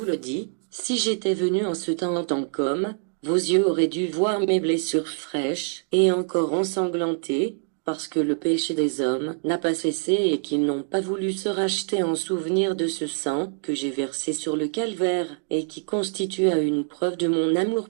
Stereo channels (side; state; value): left; silent; 62 dB below the other